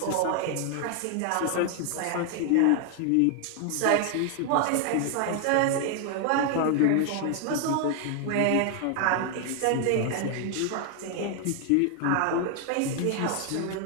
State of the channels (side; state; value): both; different; correlation 0.00